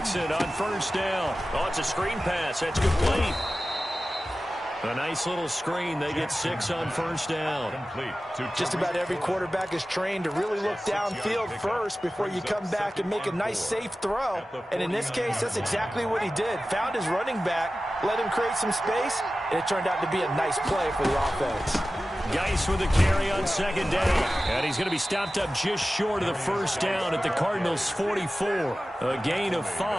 on first down. Oh, it's a screen pass. That's complete. A nice little screen. They get 6 on first down. Just about every quarterback is trained to really look downfield first before you come back and make a nice, safe throw. And in this case, that's exactly what he did. Found his running back, let him create some space, and it turned out to be a nice play for the offense. Geis with a carry on second down. And he's going to be stopped up just short of the first down at the Cardinals' 44. A gain of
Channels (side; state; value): both; normal; correlation 0.95